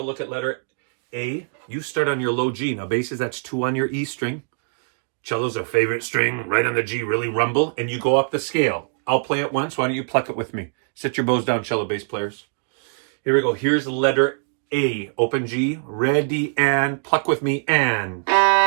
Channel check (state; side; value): silent; left; digital silence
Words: look at letter A. You start on your low G. Now basses, that's 2 on your E string. Cello's our favorite string, right on the G, really rumble, and you go up the scale. I'll play it once. Why don't you pluck it with me? Sit your bows down, cello bass players. Here we go. Here's letter A. Open G. Ready and pluck with me and.